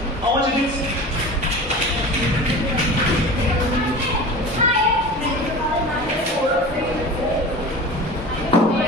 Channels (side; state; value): both; normal; correlation 0.35